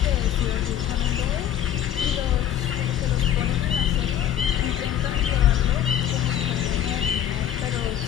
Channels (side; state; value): right; quieter; 10.5 dB